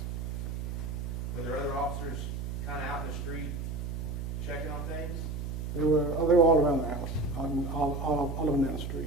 Were there other officers kind of out in the street checking on things? They were all around the house, all of them down the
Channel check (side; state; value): right; noise; hum, 4 dB below the sound